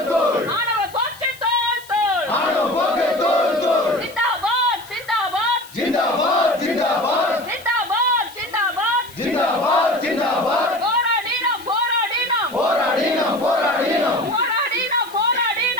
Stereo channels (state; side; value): noise; left; hiss, 21 dB below the sound